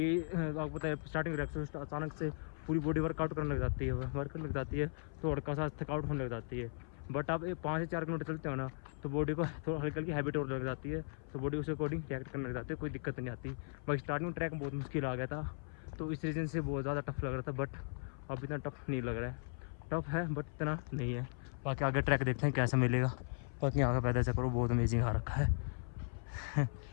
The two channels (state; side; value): silent; right; 53 dB below the other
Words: आपको पता है स्टार्टिंग ट्रैक अचानक से पूरी बॉडी वर्कआउट करने लग जाती है, वर्क करने लग जाती है, तो हल्का सा थकाउट होने लग जाती है। बट आप 5 से 4 किलोमीटर चलते हो ना, तो बॉडी को थोड़ा हल्की हल्की हैबिट और लग जाती है, तो बॉडी उस अकॉर्डिंग रिएक्ट करने लग जाती है, कोई दिक्कत नहीं आती। बट स्टार्टिंग में ट्रैक बहुत मुश्किल आ गया था, तो इस रीज़न से बहुत ज़्यादा टफ लग रहा था। बट अब इतना टफ नहीं लग रहा है, टफ है बट इतना नहीं है। बाकी आगे ट्रैक देखते हैं कैसा मिलेगा। बाकी यहाँ का पैदल चक्कर बहुत अमेजिंग आ रखा है।